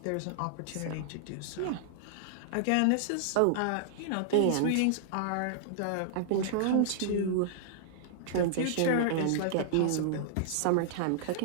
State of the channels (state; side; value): different; both; correlation -0.01